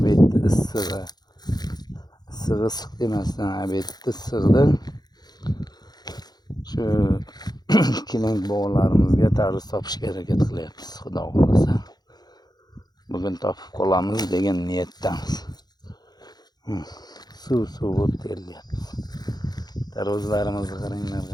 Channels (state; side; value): late; right; 0.20 ms